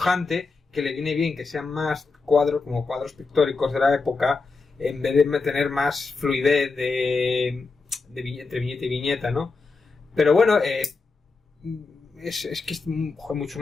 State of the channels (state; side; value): quieter; right; 4.1 dB